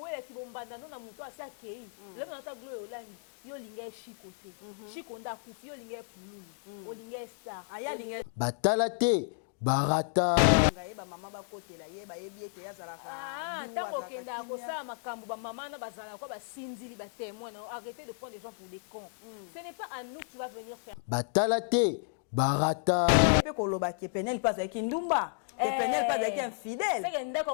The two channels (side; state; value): right; silent; digital silence